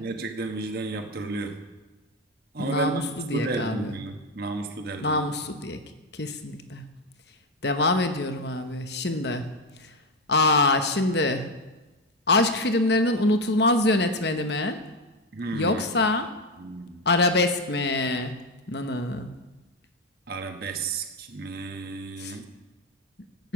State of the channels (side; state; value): both; normal; correlation 0.12